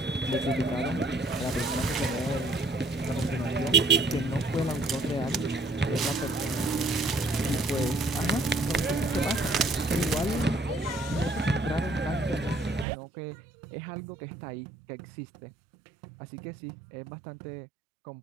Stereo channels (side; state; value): left; drops out; at 12.9 s